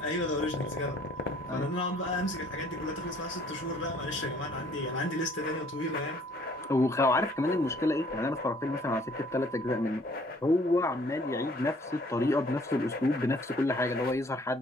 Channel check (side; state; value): both; normal; correlation 0.58